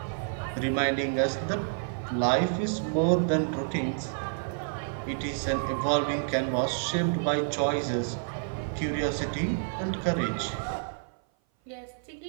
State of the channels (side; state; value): left; silent; 57 dB below the other